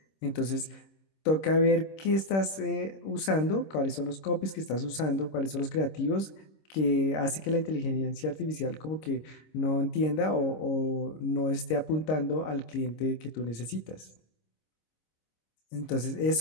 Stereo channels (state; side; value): late; right; 26 ms